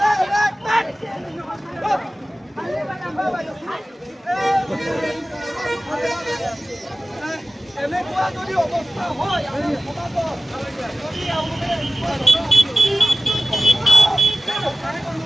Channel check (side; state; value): both; normal; correlation 0.96